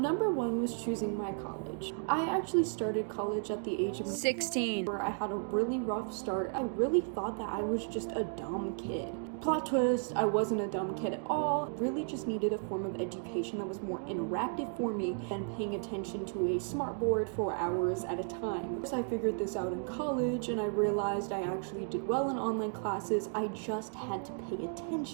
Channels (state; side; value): silent; left; 55 dB below the other